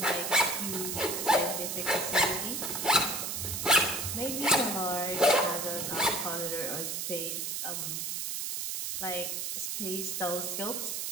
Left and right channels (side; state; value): right; noise; hiss, 3 dB below the sound